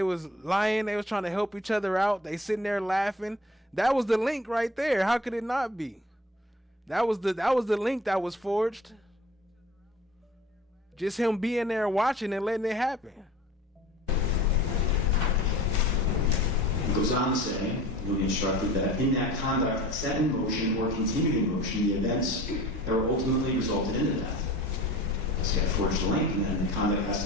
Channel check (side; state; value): both; normal; correlation 0.44